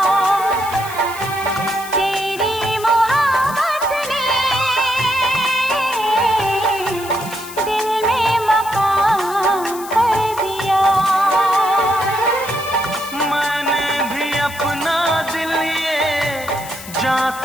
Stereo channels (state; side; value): noise; left; hiss, 14 dB below the sound